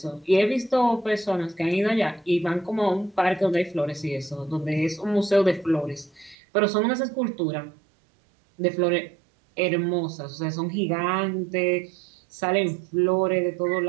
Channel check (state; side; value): drops out; left; at 6.4 s